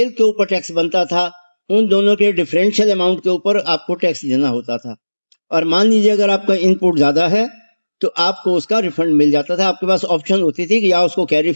के ऊपर टैक्स बनता था उन दोनों के डिफरेंशियल अमाउंट के ऊपर आपको टैक्स देना होता था। और मान लीजिए अगर आपका इनपुट ज्यादा है तो आपको उसका रिफंड मिल जाता था। आपके पास ऑप्शन होती थी कि या उसको कैरी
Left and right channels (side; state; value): both; inverted; correlation -1.00